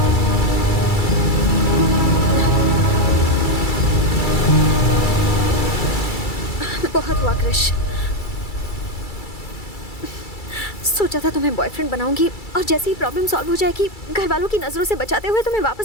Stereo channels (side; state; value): right; late; 2.3 ms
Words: बहुत हुआ कृष। सोचा था तुम्हें बॉयफ्रेंड बनाऊंगी और जैसे ही प्रॉब्लम सॉल्व हो जाएगी घर वालों की नजरों से बचाते हुए तुम्हें